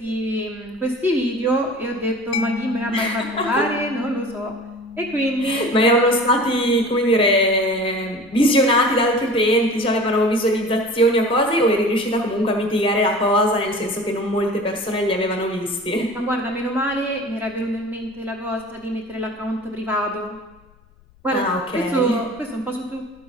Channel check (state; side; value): noise; left; rumble, 29 dB below the sound